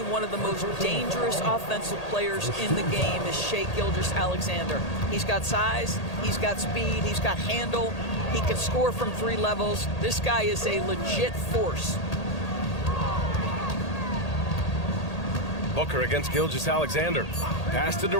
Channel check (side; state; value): right; late; 1.8 ms